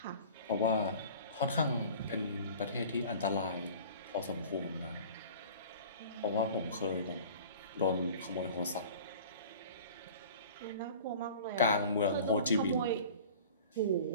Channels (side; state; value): both; inverted; correlation -0.43